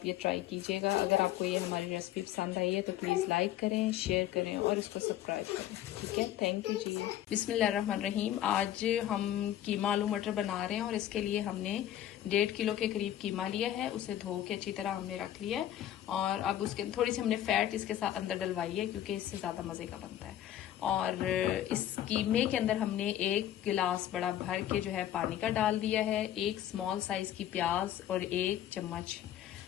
ये ट्राई कीजिएगा। अगर आपको ये हमारी रेसिपी पसंद आई है तो प्लीज़ लाइक करें, शेयर करें और इसको सब्सक्राइब करें। ठीक है, थैंक यू जी। बिस्मिल्लाहिर्रहमानिर्रहीम। आज हम कीमा आलू मटर बना रहे हैं और इसके लिए हमने 1.5 किलो के करीब कीमा लिया है। उसे धो के अच्छी तरह हमने रख लिया है और अब उसके थोड़ी सी हमने फैट इसके साथ अंदर डलवाई है क्योंकि इससे ज़्यादा मज़े का बनता है। और इस कीमे के अंदर हमने 1 गिलास बड़ा भर के जो है पानी का डाल दिया है। 1 स्मॉल साइज की प्याज और 1 चम्मच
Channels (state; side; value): quieter; right; 12.1 dB